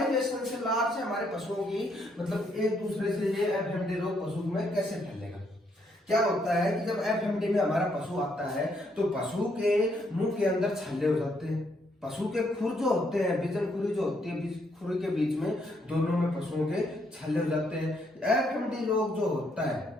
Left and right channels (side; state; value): both; normal; correlation 0.73